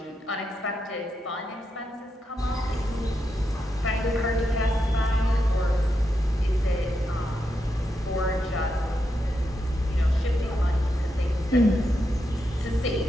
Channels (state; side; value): normal; both; correlation 0.85